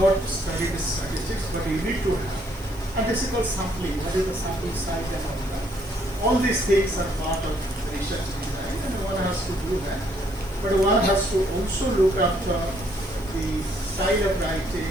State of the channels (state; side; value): noise; left; hiss, 21 dB below the sound